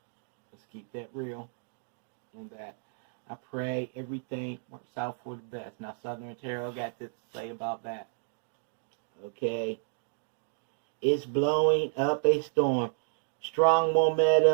Let's keep that real in that. I pray everything works out for the best. Now, Southern Tarot got this to say about that. Okay. It's blowing up a storm. Strong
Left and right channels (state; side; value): silent; left; digital silence